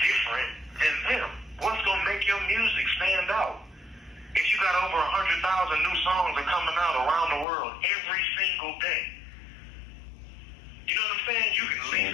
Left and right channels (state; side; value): drops out; right; at 7.5 s